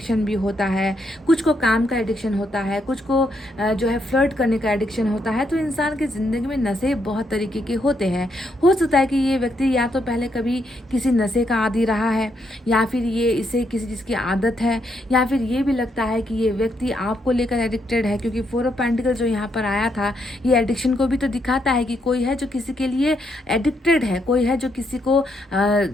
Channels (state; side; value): normal; both; correlation 0.77